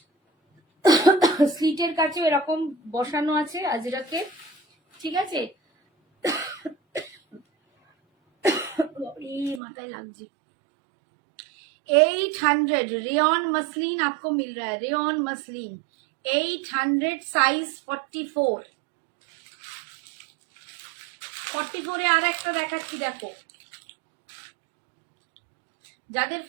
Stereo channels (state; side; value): drops out; left; at 9.6 s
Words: স্লিটের কাছে এরকম বসানো আছে আজরাকের, ঠিক আছে। माथा লাগছে। 800 रेयन मसलिन आपको मिल रहा है, रेयन मसलिन 800 साइज 44। 44 এ আর একটা দেখাচ্ছি, দেখো যাদের